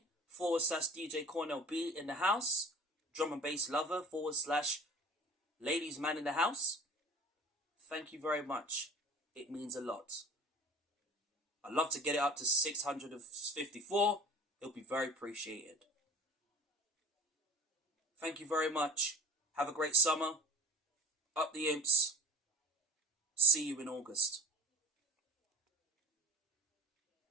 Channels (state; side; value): normal; both; correlation 0.40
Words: / DJ Cornell B in the house. Drum and bass lover / ladies man in the house. Thank you very much. It means a lot. I'd love to get it up to 654. It'll be very appreciated. Thank you very much. Have a great summer. Up the Imps. See you in August.